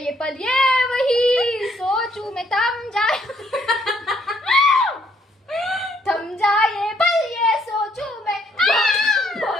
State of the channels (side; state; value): both; normal; correlation 0.69